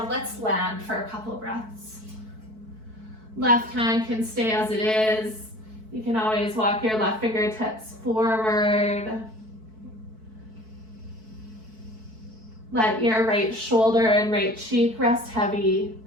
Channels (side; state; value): left; late; 4.6 ms